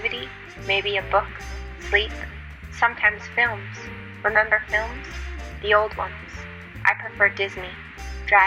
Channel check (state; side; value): identical; both; correlation 1.00